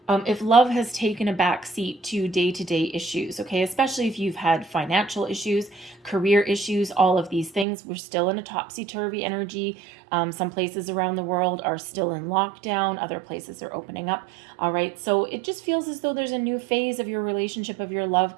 If love has taken a back seat to day-to-day issues, okay, especially if you've had financial issues, career issues, all of these things, we're still in a topsy-turvy energy. Some places around the world are still in lockdown. Other places are opening up. All right. So it just feels as though there's a new phase of your relationship, of your love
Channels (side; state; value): left; drops out; at 7.7 s